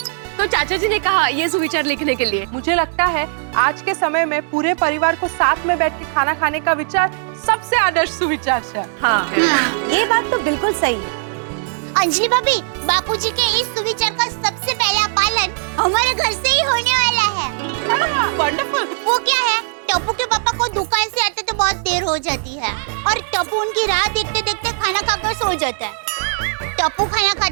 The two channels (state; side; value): silent; left; digital silence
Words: तो चाचा जी ने कहा ये सुविचार लिखने के लिए। मुझे लगता है आज के समय में पूरे परिवार को साथ में बैठ के खाना खाने का विचार सबसे आदर्श सुविचार है। हाँ, ये बात तो बिल्कुल सही है। अंजलि भाभी, बापूजी के इस सुविचार का सबसे पहला पालन हमारे घर से ही होने वाला है। वंडरफुल। वो क्या है, टप्पू के पापा को दुकान से आते तो बहुत देर हो जाती है और टप्पू उनकी राह देखते देखते खाना खाकर सो जाता है। टप्पू खाना